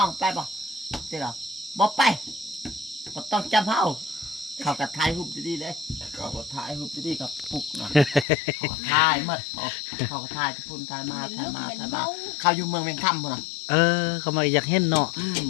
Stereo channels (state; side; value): drops out; right; at 8.2 s